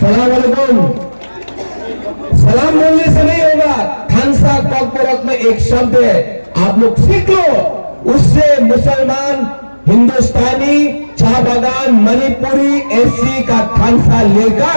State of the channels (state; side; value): inverted; both; correlation -1.00